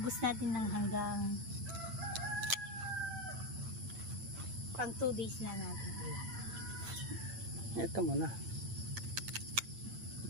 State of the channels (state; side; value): late; left; 8.9 ms